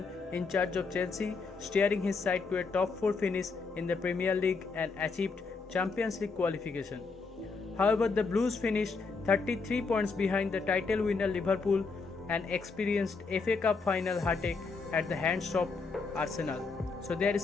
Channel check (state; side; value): quieter; right; 4.4 dB